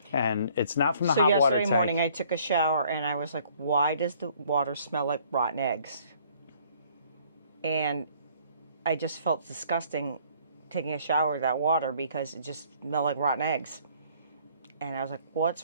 And it's not from the hot water tank. So yesterday morning I took a shower and I was like, why does the water smell like rotten eggs? And I just felt disgusting taking a shower with that water because it just smelled like rotten eggs. And I was like,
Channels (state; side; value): inverted; both; correlation -0.60